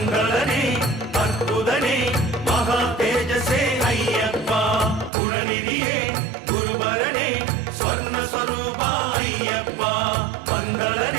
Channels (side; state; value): left; drops out; at 5.1 s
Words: அற்புதனே மகா தேஜசே ஐயப்பா குணநிதியே குருபரனே ஸ்வர்ண ஸ்வரூபா ஐயப்பா